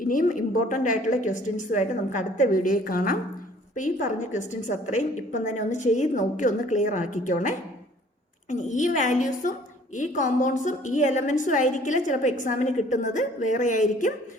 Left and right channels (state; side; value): normal; both; correlation 0.55